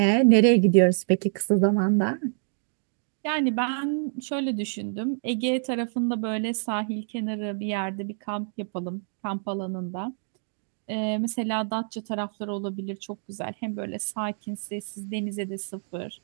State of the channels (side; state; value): left; silent; 60 dB below the other